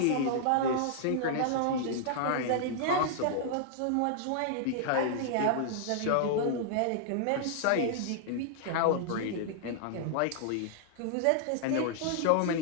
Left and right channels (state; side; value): different; both; correlation -0.01